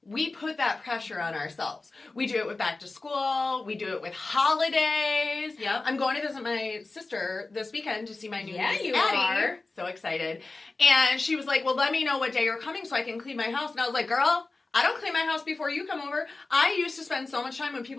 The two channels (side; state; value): right; quieter; 3.5 dB